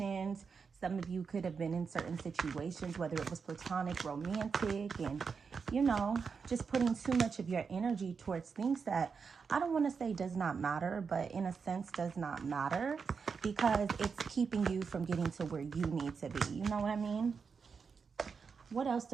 Some of you could have been in certain situations, whether it was platonic, romantic, and, just putting too much of your energy towards things that I don't want to say does not matter, but in a sense does not matter because it's keeping you from getting to where you need to be. You know what I mean? What else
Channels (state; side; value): quieter; left; 5.6 dB